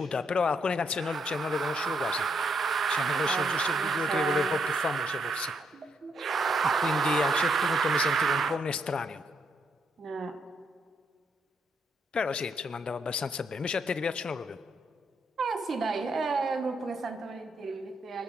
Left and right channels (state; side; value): normal; both; correlation 0.75